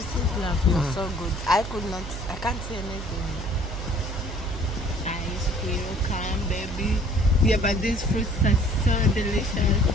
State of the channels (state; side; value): noise; right; hum, 8 dB below the sound